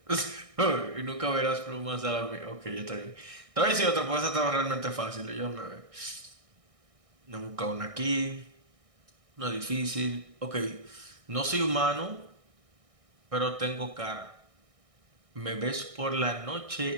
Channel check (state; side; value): late; left; 1.6 ms